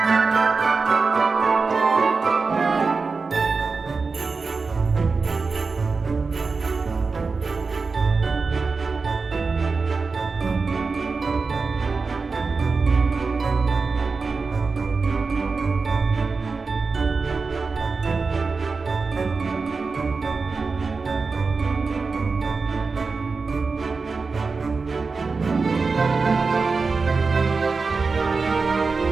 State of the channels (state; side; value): quieter; left; 4.4 dB